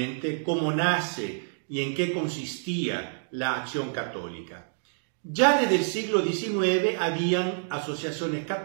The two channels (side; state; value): left; silent; digital silence